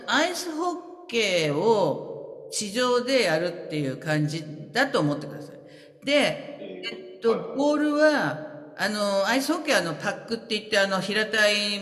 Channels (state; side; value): identical; both; correlation 1.00